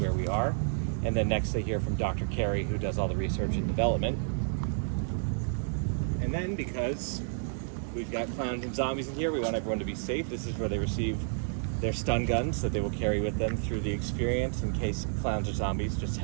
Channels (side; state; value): left; silent; digital silence